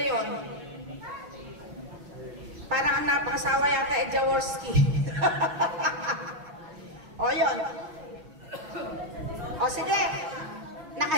Parang ang napakasawa yata Jaworski. Yun. Sige.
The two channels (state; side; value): late; left; 6.4 ms